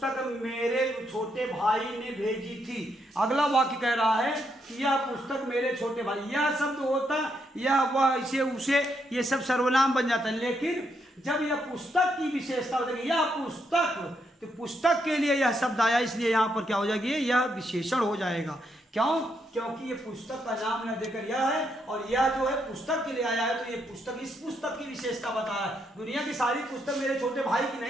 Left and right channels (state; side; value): normal; both; correlation 0.78